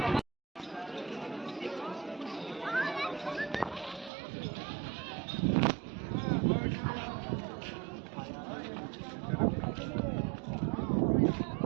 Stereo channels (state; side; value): drops out; left; at 4.1 s